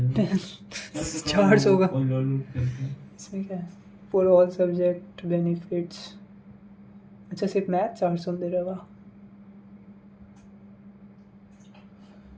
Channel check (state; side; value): identical; both; correlation 1.00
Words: 400 का। लोन करते हैं। इसमें क्या है? For all subject benefits. अच्छा सिर्फ मैथ 400 दे रहा है।